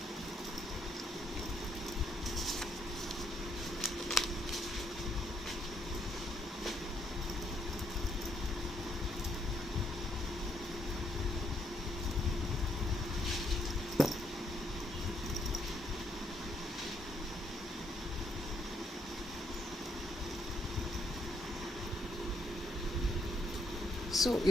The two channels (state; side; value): normal; both; correlation 0.73